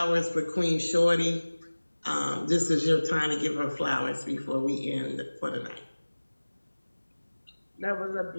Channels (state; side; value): inverted; both; correlation -1.00